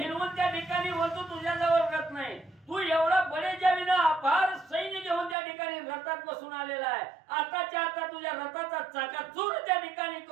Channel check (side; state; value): left; drops out; at 5.4 s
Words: त्या ठिकाणी बोलतो तुझ्याजवळ रथ नाही. तू एवढा बडेजावीनं अपार सैन्य घेऊन त्या ठिकाणी रथात बसून आलेला आहे. आताच्या आता तुझ्या रथाचा चाकाचूर त्या ठिकाणी